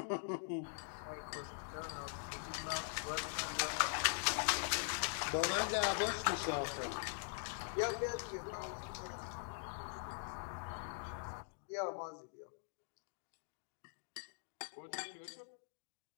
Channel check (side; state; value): right; silent; digital silence